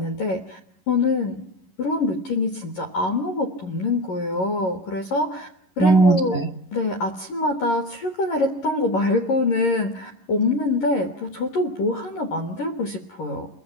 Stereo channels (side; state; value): right; late; 11 ms